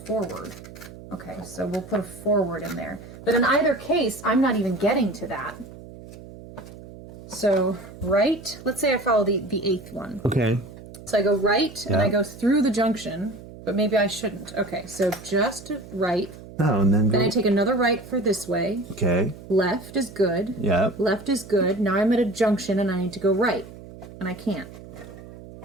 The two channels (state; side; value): noise; right; hum, 16 dB below the sound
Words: Okay, so we'll put a forward in there. But in either case, I'm not even getting to that. So right, let's say I follow the 8th one. Okay. So I go right, and Yeah. I go through the junction, but maybe I shouldn't. Okay, so just right. Oh, and then go. Then I take another right for this way. Okay. Left is good. Yep. Left is good. Now I'm at a junction, and I need to go right. And I can't.